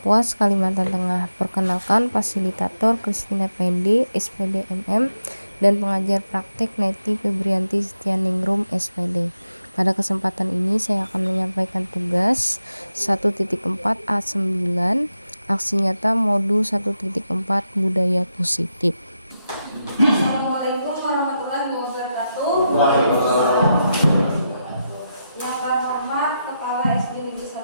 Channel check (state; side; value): inverted; both; correlation -0.87